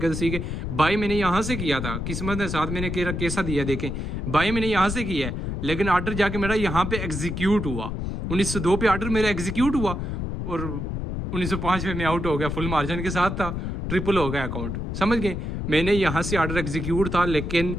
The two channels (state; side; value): noise; left; rumble, 4 dB below the sound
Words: सी के बाई मैंने यहाँ से किया था, किस्मत के साथ मैंने कैसा दिया देखें। बाई मैंने यहाँ से किया है, लेकिन ऑर्डर जाके मेरा यहाँ पे एग्जीक्यूट हुआ। 1902 पे ऑर्डर मेरा एग्जीक्यूट हुआ और 1905 में मैं आउट हो गया, फुल मार्जिन के साथ था, ट्रिपल हो गया अकाउंट, समझ गए। मैंने यहाँ से ऑर्डर एग्जीक्यूट था, लेकिन